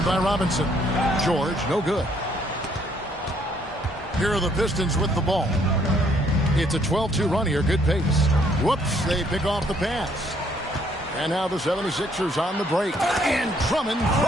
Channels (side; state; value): both; normal; correlation 0.67